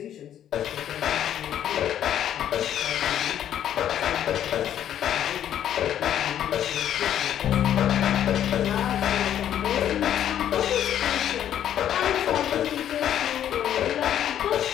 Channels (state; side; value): quieter; right; 10.5 dB